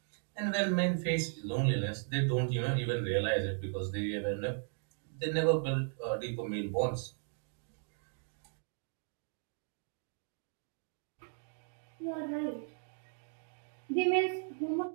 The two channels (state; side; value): silent; left; 53 dB below the other